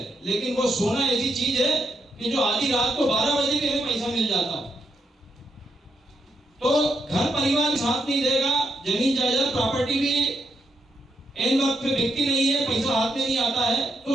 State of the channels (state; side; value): normal; both; correlation 0.80